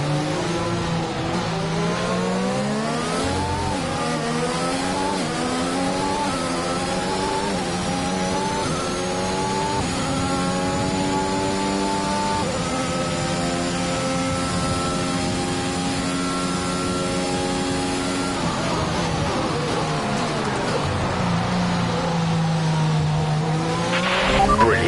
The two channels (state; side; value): identical; both; correlation 1.00